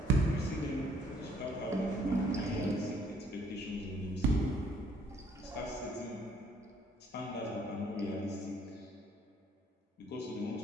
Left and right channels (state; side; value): normal; both; correlation 0.64